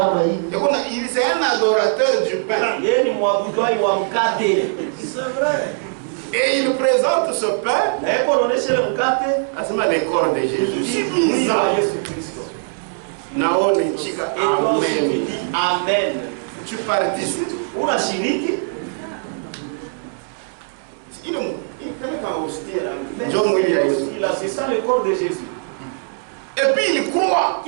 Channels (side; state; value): left; silent; digital silence